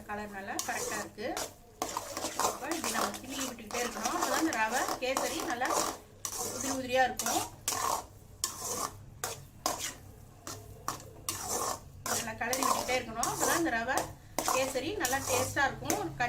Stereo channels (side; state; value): both; identical; correlation 1.00